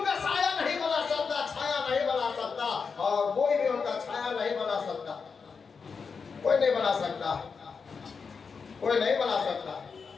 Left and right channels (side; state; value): right; quieter; 5.4 dB